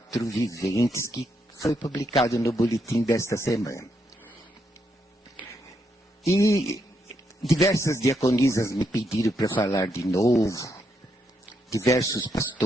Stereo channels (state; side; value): normal; both; correlation 0.79